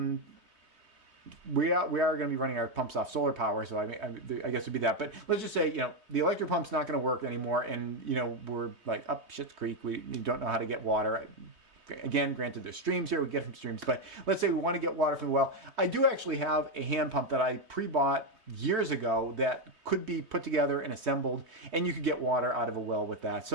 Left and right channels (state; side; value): late; left; 3.2 ms